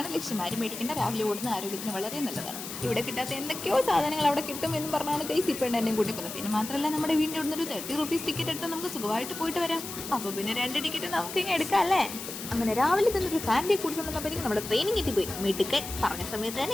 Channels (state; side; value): noise; left; hiss, 9 dB below the sound